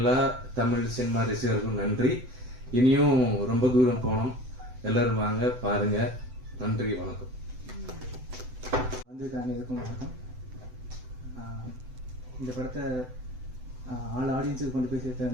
தமிழ் சினிமா ரசிகர்களுக்கும் நன்றி. இனியும் ரொம்ப தூரம் போனோம். எல்லாரும் வாங்க பாருங்க. நன்றி, வணக்கம். அனைவருக்கும் வணக்கம். இந்த படத்தை ஆல் ஆடியன்ஸுக்கு கொண்டு போய் சேர்த்த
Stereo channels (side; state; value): left; late; 7.9 ms